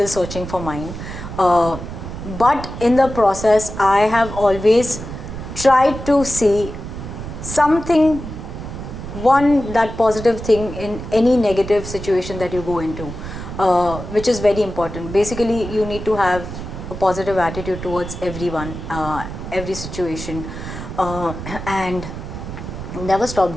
searching for mine. But in the process, I have always tried to see something, that positive thing in any negative situation that you go into, which is very important. Basically, you need to have a positive attitude towards everyone, every situation, and never stop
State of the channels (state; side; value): noise; right; rumble, 9 dB below the sound